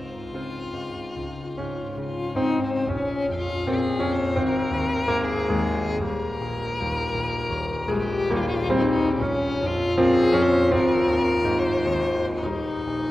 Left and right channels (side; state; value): both; normal; correlation 0.94